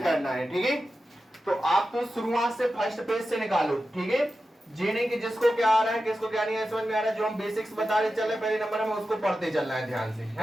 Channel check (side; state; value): both; normal; correlation 0.92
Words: करना है। ठीक है, तो आप तो शुरुआत से फर्स्ट पेज से निकालो। ठीक है, ये नहीं कि जिसको क्या आ रहा है किसको क्या नहीं है समझ में आ रहा है, जो हम बेसिक्स बता रहे चल रहे पहले नंबर में उसको पढ़ते चलना है ध्यान से,